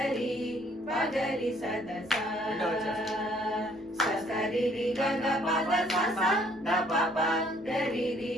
ప గరి స ద స. స స రి రి గ గ ప ద స స ద ప ప గరి రి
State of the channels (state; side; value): noise; right; rumble, 29 dB below the sound